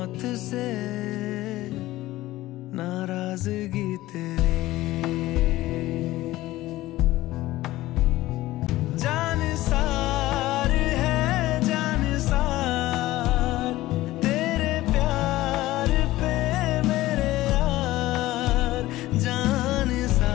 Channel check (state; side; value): quieter; right; 16.9 dB